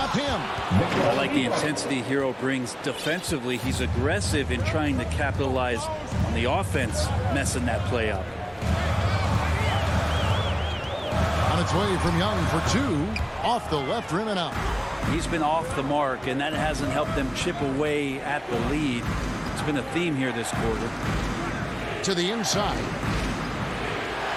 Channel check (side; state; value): both; identical; correlation 1.00